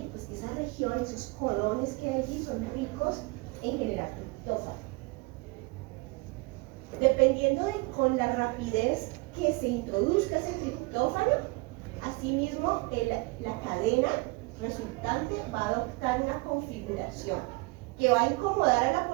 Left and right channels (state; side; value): quieter; left; 25.9 dB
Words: Pues que esa región, esos codones que hay allí son ricos en generar triptófano. Dependiendo de con la rapidez que se introduzca ese triptófano, asimismo la cadena resultante va a adoptar una configuración que va a incomodar a la